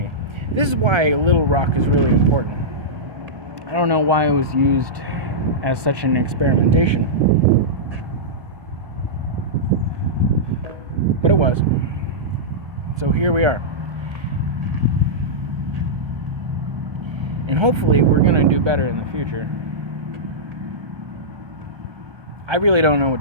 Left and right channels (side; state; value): left; late; 1.3 ms